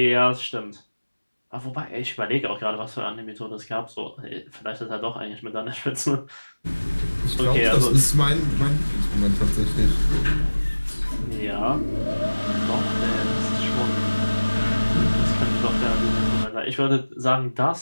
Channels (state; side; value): inverted; both; correlation -1.00